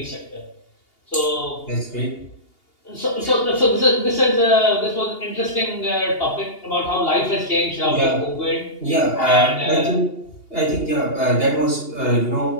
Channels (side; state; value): right; late; 2.8 ms